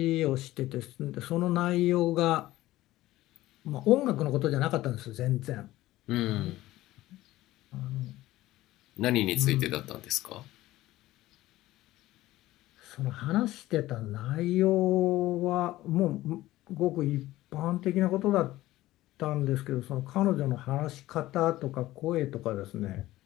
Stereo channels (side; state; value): right; quieter; 16.4 dB